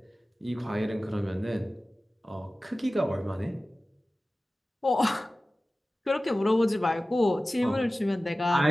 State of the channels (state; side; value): normal; both; correlation 0.96